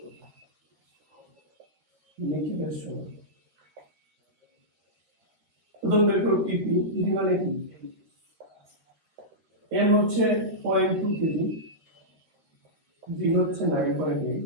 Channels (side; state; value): left; late; 13 ms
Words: করব। নিক্ষেপের সময় প্রথম বের করব ইপি। ইপি মানে কি? এম হচ্ছে 0.2 কেজি, জি হচ্ছে